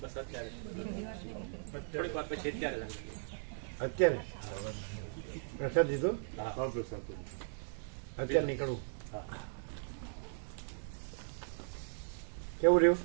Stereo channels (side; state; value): left; silent; digital silence